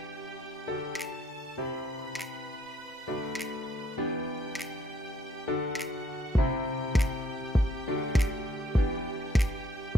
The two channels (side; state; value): both; normal; correlation 0.66